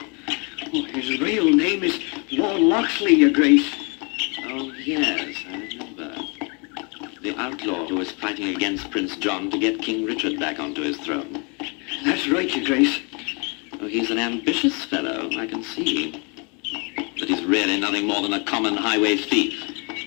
Oh, his real name is Lord Locksley, Your Grace. Oh, yes, I remember. The outlaw who was fighting against Prince John to get King Richard back onto his throne. That's right, Your Grace. Oh, he's an ambitious fellow, I can see. But he's really nothing more than a common highway thief.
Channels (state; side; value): quieter; right; 32.9 dB